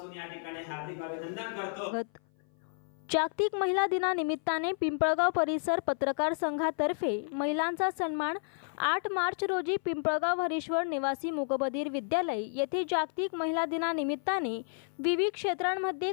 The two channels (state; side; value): silent; right; 56 dB below the other